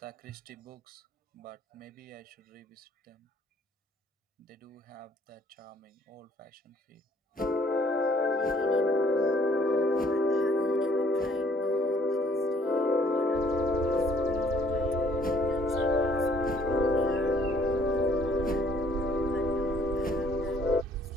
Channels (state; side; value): normal; both; correlation 0.62